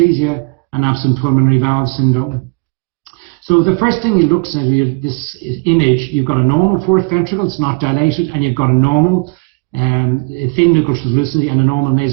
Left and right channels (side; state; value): left; quieter; 30.8 dB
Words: and absent pulmonary valve syndrome. So the first thing you look at this image, you've got a normal 4th ventricle, it's not dilated, and you've got a normal thin nuchal translucency and a normal